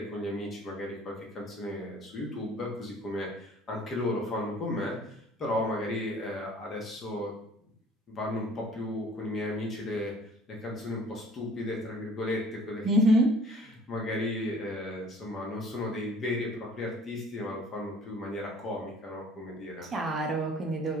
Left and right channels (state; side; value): normal; both; correlation 0.52